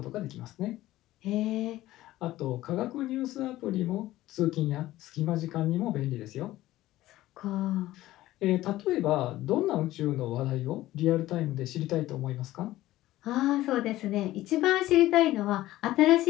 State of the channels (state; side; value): quieter; right; 15.8 dB